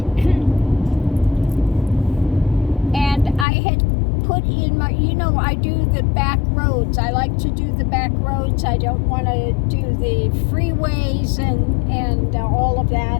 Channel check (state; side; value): drops out; right; at 3.5 s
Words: And I had put in my, I do the back roads. I like to do the back roads. I don't want to do the freeways and all of